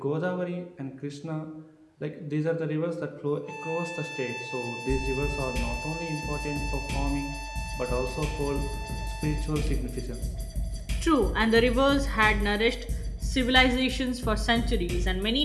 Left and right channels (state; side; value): identical; both; correlation 1.00